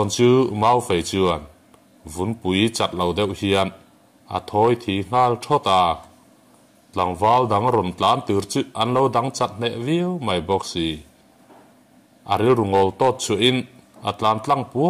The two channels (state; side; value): identical; both; correlation 1.00